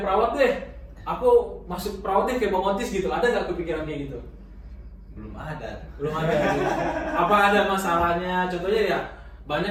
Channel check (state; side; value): identical; both; correlation 1.00